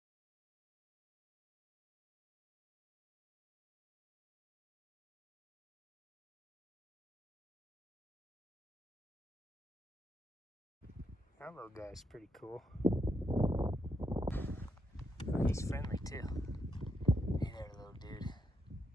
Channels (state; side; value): normal; both; correlation 0.81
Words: That little guy's pretty cool. Oh, he's friendly too. Hey there, little dude.